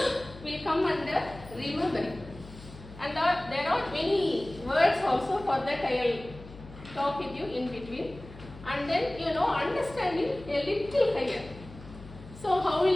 come under remembering. And there are many words also. For that I will talk with you in between. And then understanding a little higher. So how will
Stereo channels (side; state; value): left; noise; hum, 17 dB below the sound